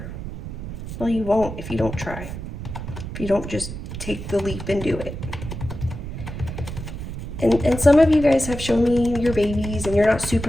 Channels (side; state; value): right; noise; rumble, 8 dB below the sound